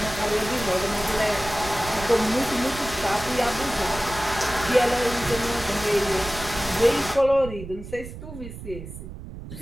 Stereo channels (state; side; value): noise; right; rumble, 12 dB below the sound